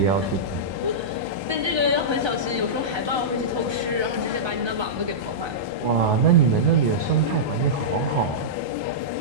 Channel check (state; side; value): late; left; 1.3 ms